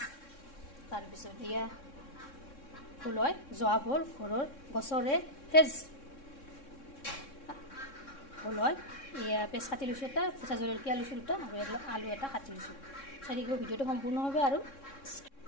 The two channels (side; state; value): right; late; 3.6 ms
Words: তাৰ পিছত এয়া ফুলয় জোৱা ভল ঘৰৰ গছৰে ফ্ৰেজ ফুলয় এয়া পেছ কাটি লৈছো এটা কেঁচা জলকীয়া লৈছো দুটা আৰু আলু এটা কাটি লৈছো চাৰিগো ভিডিওটো সম্পূৰ্ণ হবে আৰু